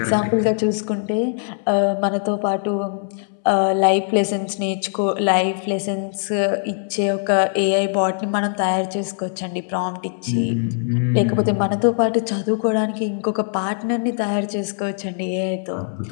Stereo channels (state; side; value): silent; right; 65 dB below the other